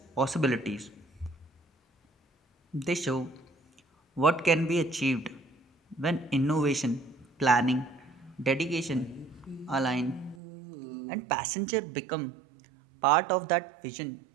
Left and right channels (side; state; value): left; drops out; at 10.4 s